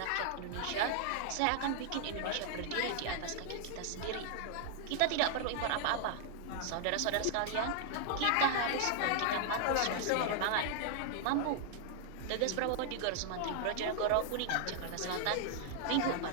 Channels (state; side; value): different; both; correlation 0.00